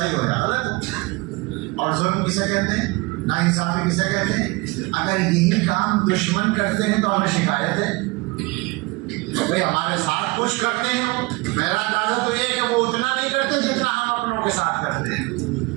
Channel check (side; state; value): left; quieter; 24.2 dB